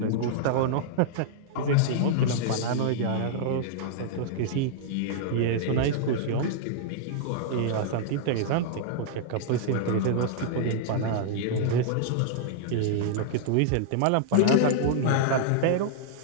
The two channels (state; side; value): different; both; correlation -0.01